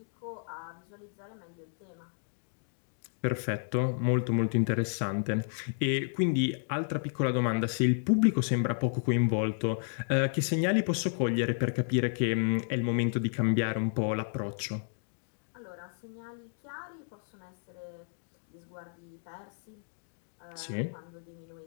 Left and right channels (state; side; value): silent; right; digital silence